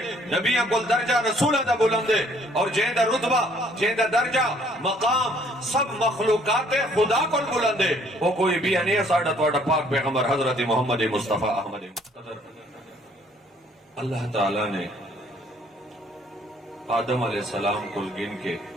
نبیاں کل درجہ رسولہ دا بلندے، اور جہیں دا رتبہ جہیں دا درجہ مقام سب مخلوقات خدا کل بلندے، وہ کوئی بھی نہیں ہے ساڑھا توڑا پاک پیغمبر حضرت محمد مصطفیٰ احمد مقتدر۔ اللہ تعالیٰ نے آدم علیہ السلام کو گن کے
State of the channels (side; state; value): both; normal; correlation 0.62